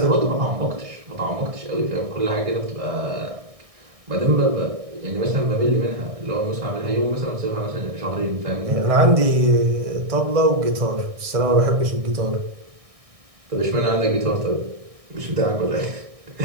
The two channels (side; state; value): left; late; 1.6 ms